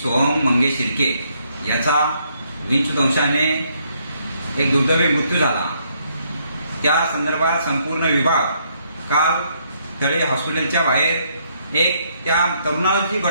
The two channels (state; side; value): inverted; both; correlation -0.72